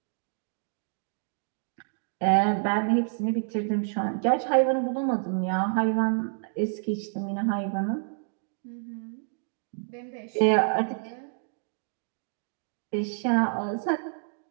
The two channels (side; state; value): left; silent; digital silence